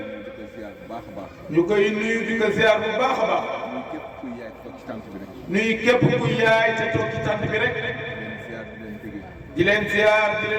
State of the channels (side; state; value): both; identical; correlation 1.00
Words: ñu koy nuyu di ko ziar bu baax a baax nuyu képp ku yaay te toog ci tànt bi rek di leen ziar di